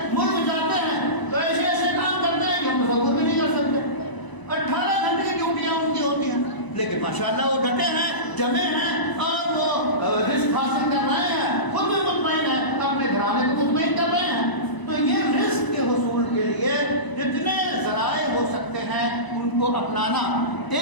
ملک جاتے ہیں تو ایسے ایسے کام کرتے ہیں کہ ہم تصور بھی نہیں کر سکتے۔ 18 گھنٹے کی ڈیوٹیاں ان کی ہوتی ہیں، لیکن ماشاءاللہ وہ ڈٹے ہیں، جمے ہیں، اور وہ رزق حاصل کر رہے ہیں، خود بھی مطمئن ہیں، اپنے گھرانے کو مطمئن کر رہے ہیں۔ تو یہ رزق کے حصول کے لیے جتنے ذرائع ہو سکتے ہیں ان کو اپنانا،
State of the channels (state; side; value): late; right; 1.0 ms